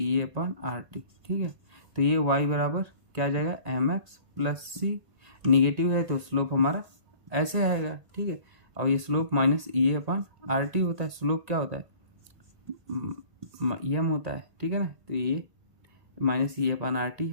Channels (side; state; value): left; late; 1.8 ms